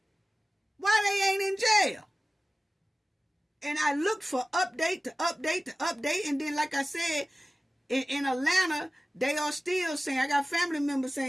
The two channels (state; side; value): normal; both; correlation 0.97